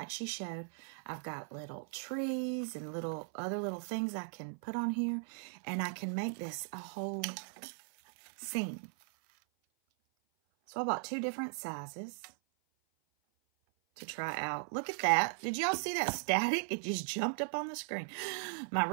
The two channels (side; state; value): left; silent; 52 dB below the other